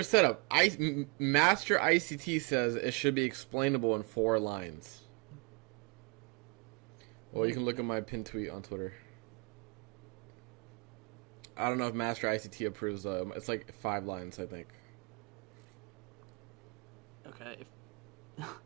setup? Master ICT says it should be explainable in 4 lines. Well, you can look at my pinned tweet on Twitter. I don't know if Master ICT approves. It's like 5 lines, I think. Okay.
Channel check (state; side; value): quieter; left; 31.0 dB